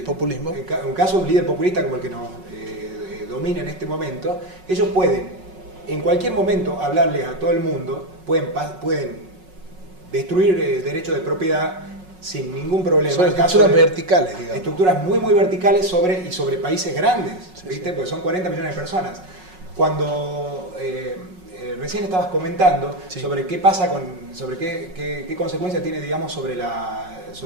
populismo, en un caso de un líder populista como el que nos domina en este momento, ellos pueden en cualquier momento hablarle a todo el mundo, pueden destruir derechos de propiedad sin ningún problema. Son estructuras verticales, digamos. Estructuras muy verticales sobre países grandes, ¿viste? Sí. Porque son 40 millones de personas. Cuando recién estabas comentando sobre qué pasa sobre qué consecuencias tiene, digamos, sobre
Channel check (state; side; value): late; left; 5.4 ms